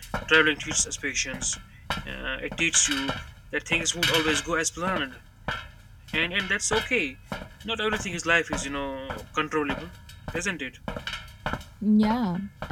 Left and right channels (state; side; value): identical; both; correlation 1.00